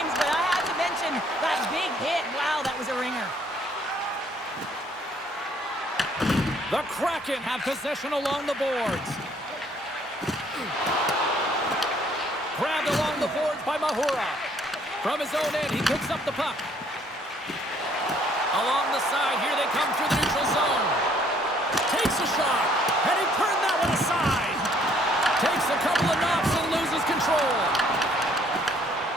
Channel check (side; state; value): both; normal; correlation 0.63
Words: but I have to mention that big hit. Wow, that was a ringer. The Kraken have possession along the boards. Grabbed along the boards by Mahura. From his own end, he picks up the puck. Along the side, here they come through the neutral zone. Takes a shot, and he turned that one aside. Takes a couple of knocks and loses control.